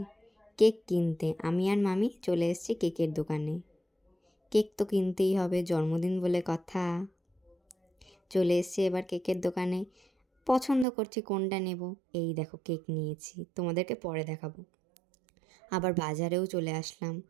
কেক কিনতে আমি আর মামি চলে এসেছি কেকের দোকানে। কেক তো কিনতেই হবে, জন্মদিন বলে কথা। চলে এসেছি এবার কেকের দোকানে। পছন্দ করছি কোনটা নেব। এই দেখো কেক নিয়েছি, তোমাদেরকে পরে দেখাবো। আবার বাজারেও চলে আসলাম,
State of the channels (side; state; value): left; drops out; at 10.9 s